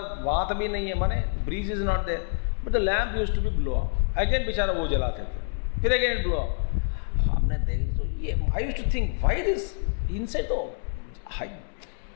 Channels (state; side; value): silent; right; 60 dB below the other